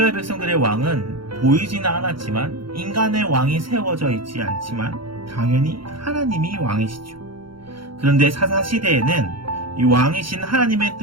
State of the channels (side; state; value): left; late; 0.73 ms